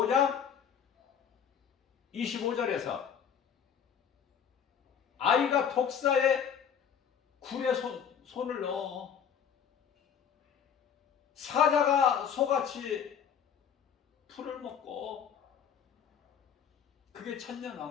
25절에서 아이가 독사의 굴에 손을 넣어 사자가 소같이 풀을 먹고, 그게 천년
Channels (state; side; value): quieter; right; 8.0 dB